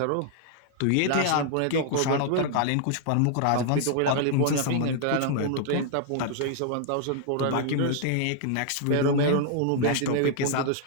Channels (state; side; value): different; both; correlation 0.00